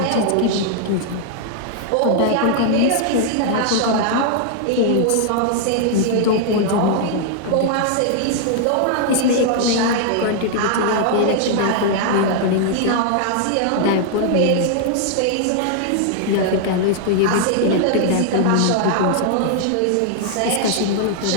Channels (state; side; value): different; both; correlation -0.01